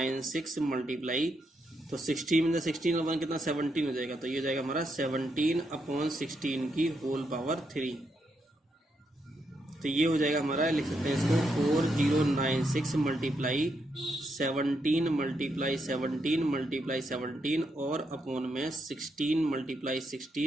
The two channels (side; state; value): both; normal; correlation 0.80